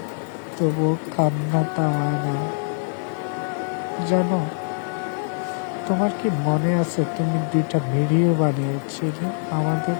তবু কান্না থামায় না। জানো, তোমার কি মনে আছে তুমি 2টা ভিডিও বানিয়েছিলে আমাদের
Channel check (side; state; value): right; silent; 63 dB below the other